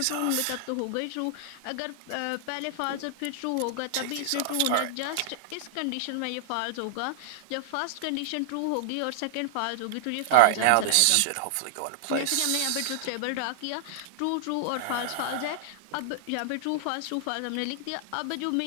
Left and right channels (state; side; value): different; both; correlation -0.01